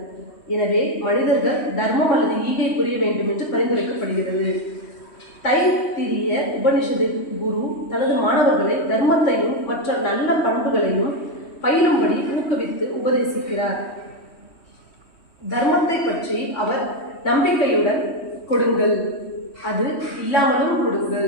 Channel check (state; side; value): late; right; 3.1 ms